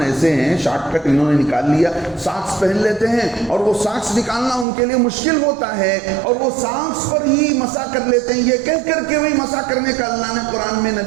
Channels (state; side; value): drops out; left; at 4.7 s